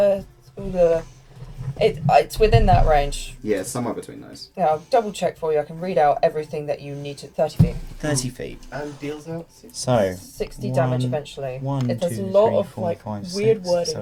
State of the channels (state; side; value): identical; both; correlation 1.00